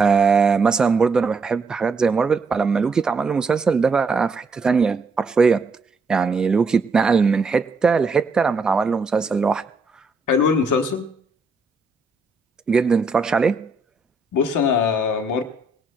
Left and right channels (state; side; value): quieter; left; 3.4 dB